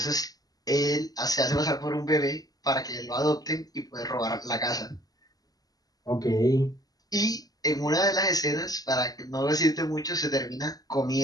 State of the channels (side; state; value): right; late; 0.18 ms